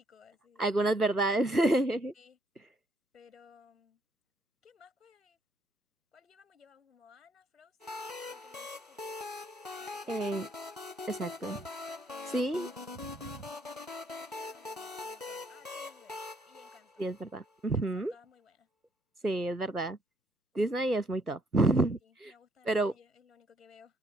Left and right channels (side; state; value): both; normal; correlation 0.69